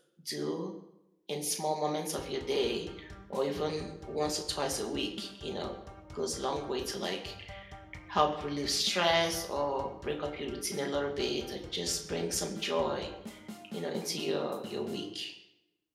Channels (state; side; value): identical; both; correlation 1.00